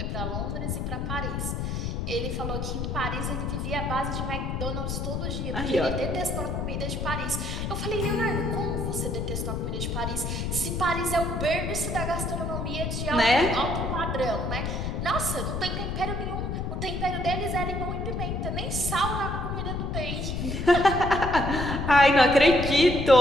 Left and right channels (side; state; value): left; noise; rumble, 2 dB below the sound